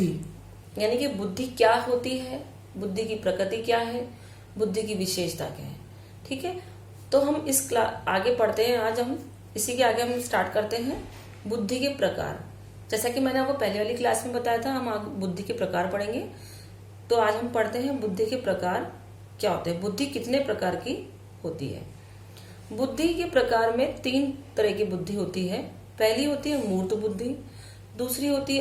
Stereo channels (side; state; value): both; identical; correlation 1.00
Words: यानी कि बुद्धि क्या होती है, बुद्धि की प्रकृति क्या है, बुद्धि की विशेषता क्या है। ठीक है, तो हम इस क्लास आगे पढ़ते हैं। आज हम इसी के आगे हम स्टार्ट करते हैं बुद्धि के प्रकार। जैसा कि मैंने आपको पहले वाली क्लास में बताया था, हम आगे बुद्धि के प्रकार पढ़ेंगे। तो आज हम पढ़ते हैं बुद्धि के प्रकार क्या होते हैं, बुद्धि कितने प्रकार की होती है। बुद्धि के प्रकार में 3 तरह की बुद्धि होती है। पहली होती है मूर्त बुद्धि, दूसरी होती